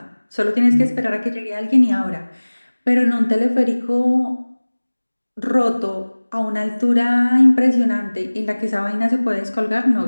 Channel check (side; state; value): both; inverted; correlation -1.00